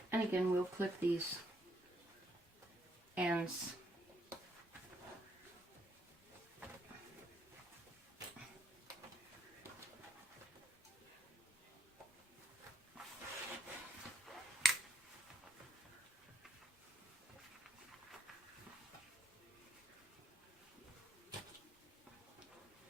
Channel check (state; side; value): normal; both; correlation 0.72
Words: And again, we'll clip these ends.